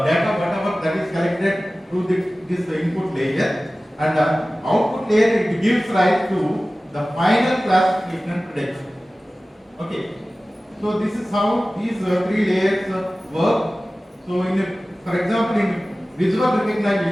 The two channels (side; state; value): both; normal; correlation 0.97